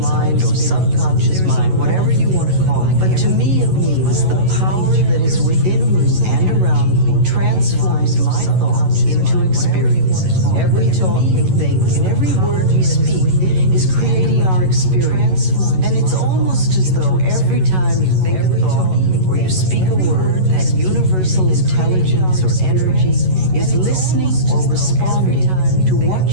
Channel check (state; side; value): late; left; 11 ms